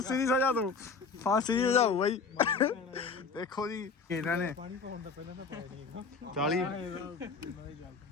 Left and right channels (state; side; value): quieter; right; 4.8 dB